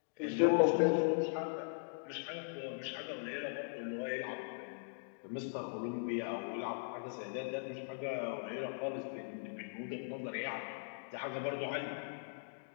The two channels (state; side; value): silent; right; digital silence